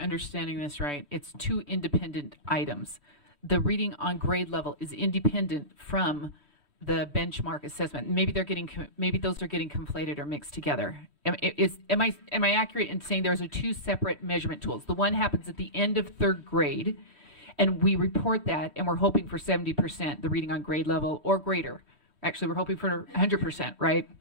this right, it's two independent items. The reading on grade level is independent from the benchmark assessment. Maybe maybe those are getting conflated or mixed together. Am I accurate in saying those are two separate measurement tools? The one happens at the end of third grade, and we report that, and we're hoping for 70%, the reading on grade level or greater. Actually, we're hoping for 100%, right?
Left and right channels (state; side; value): late; left; 3.1 ms